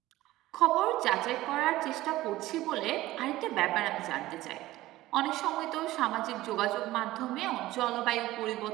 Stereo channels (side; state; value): left; quieter; 16.7 dB